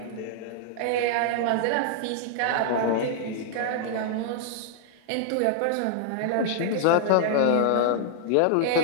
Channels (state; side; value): different; both; correlation -0.01